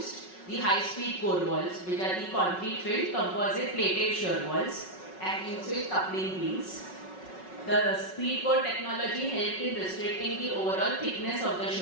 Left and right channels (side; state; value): right; late; 5.4 ms